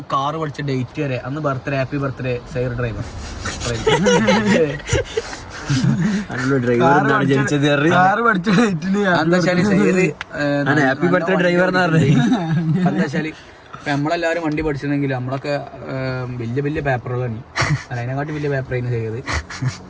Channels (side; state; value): both; identical; correlation 1.00